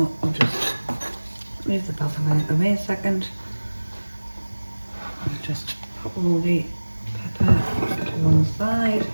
I'll just move the basil out of the way a second. I'll just put all the pepper to one side.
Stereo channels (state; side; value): inverted; both; correlation -1.00